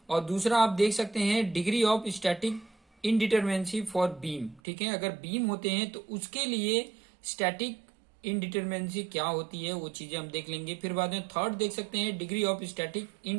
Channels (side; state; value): left; drops out; at 4.6 s